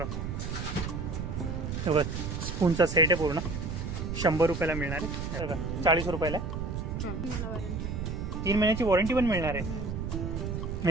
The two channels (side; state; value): right; noise; rumble, 4 dB below the sound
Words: बघा स्पूनचा सेट आहे पूर्ण 100 रुपयाला मिळणार आहे. बघा 40 रुपयाला. 3 महिन्याची वॉरंटी पण मिळणार आहे.